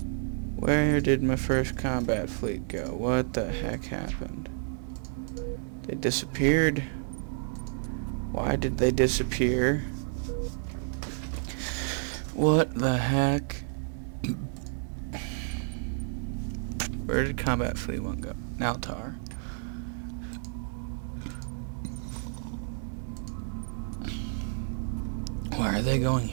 Where did my first combat fleet go? What the heck happened? They disappeared. Why did they disappear? What the heck? Where did combat fleet 1 go? Naltar. Why are they going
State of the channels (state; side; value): silent; left; digital silence